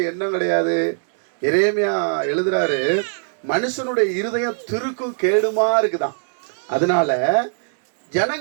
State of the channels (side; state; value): left; silent; digital silence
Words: எண்ணம் கிடையாது. எரேமியா எழுதுறாரு, மனுஷனுடைய இருதயம் திருக்கும் கேடுமா இருக்குதான். அதனால